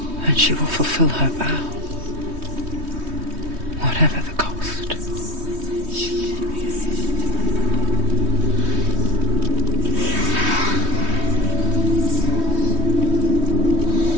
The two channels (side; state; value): left; late; 3.2 ms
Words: And she will fulfill her vow, whatever the cost.